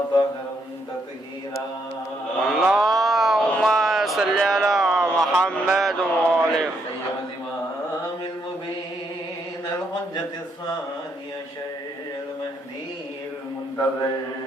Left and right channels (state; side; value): normal; both; correlation 0.75